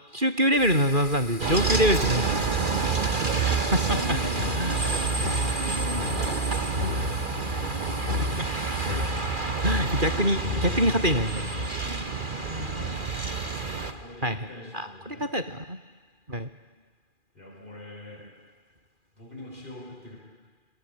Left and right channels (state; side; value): late; left; 2.4 ms